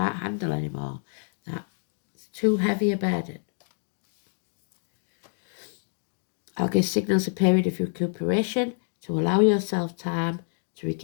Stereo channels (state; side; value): silent; right; 57 dB below the other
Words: handle anymore. That's too heavy a burden. Algis signals a period of recuperation to allow yourself time to